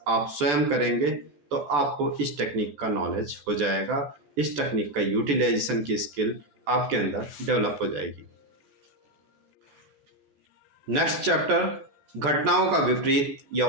आप स्वयं करेंगे तो आपको इस टेक्निक का नॉलेज हो जाएगा, इस टेक्निक का यूटिलाइजेशन की स्किल आपके अंदर डेवलप हो जाएगी। नेक्स्ट चैप्टर, घटनाओं का विपरीत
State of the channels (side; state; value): left; late; 14 ms